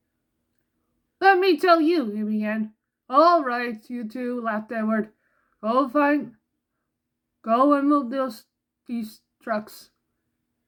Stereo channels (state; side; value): identical; both; correlation 1.00